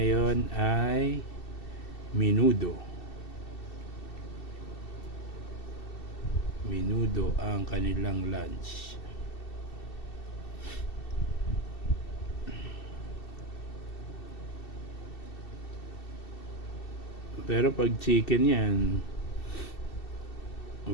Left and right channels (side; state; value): right; late; 2.7 ms